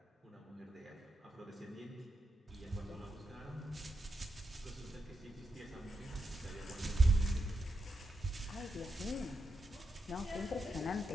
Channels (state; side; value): normal; both; correlation 0.85